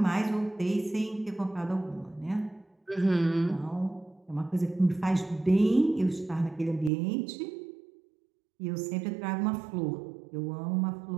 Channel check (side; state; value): left; drops out; at 6.9 s